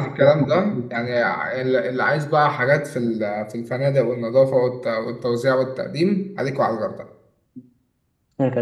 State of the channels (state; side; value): identical; both; correlation 1.00